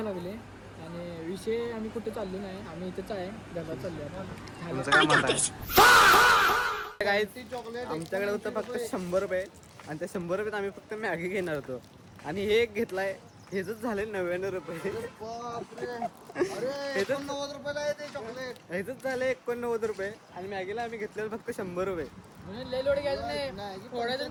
लागले आणि विषय आम्ही कुठे चाललो नाही. आम्ही इथेच आहे घरात चाललो आमच्याकडे होतं फक्त 100 रुपये आणि त्या 100 रुपयात आम्ही फक्त मॅगी घेणार होतो आणि हे एक घेतलाय. हेच झाले 99 रुपये. हेच झाले 89 रुपये आणि मॅगीला आम्ही घेतलेलं फक्त 100 रुपये. लय लोड घ्यायचं नाही, थोड्या जण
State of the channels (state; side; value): identical; both; correlation 1.00